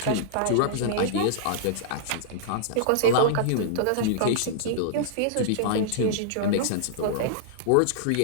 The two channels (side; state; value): both; different; correlation -0.02